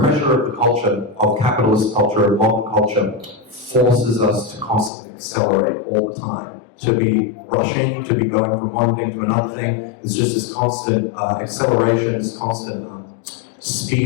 of the culture, of capitalist culture, of modern culture, forces us to constantly accelerate all the time. To be rushing, to be going from one thing to another thing. It's just this constant acceleration, this constant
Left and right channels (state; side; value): drops out; right; at 4.9 s